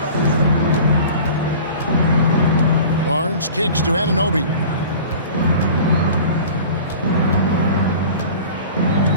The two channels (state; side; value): inverted; both; correlation -0.41